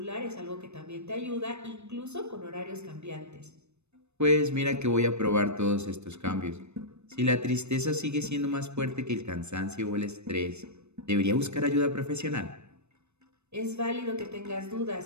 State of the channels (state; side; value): late; left; 0.81 ms